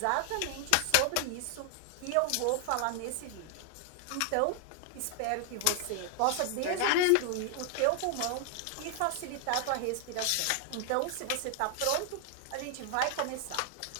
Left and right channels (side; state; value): both; different; correlation 0.00